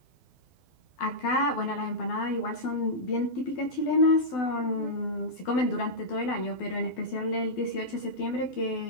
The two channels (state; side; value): late; right; 12 ms